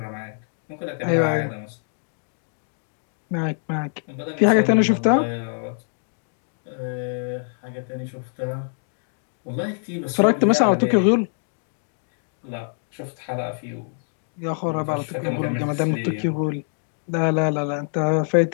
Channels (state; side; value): silent; right; digital silence